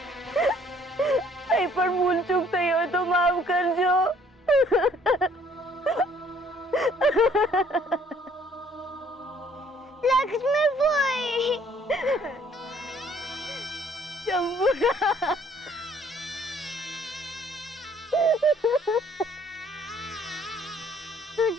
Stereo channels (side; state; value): both; normal; correlation 0.60